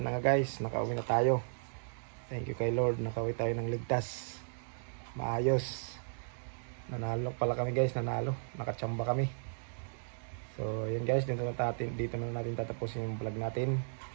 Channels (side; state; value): left; silent; digital silence